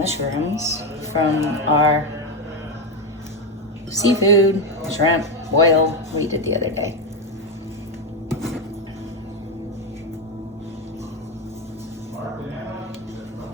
from our seafood, shrimp, boil we did the other day.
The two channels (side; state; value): both; normal; correlation 0.10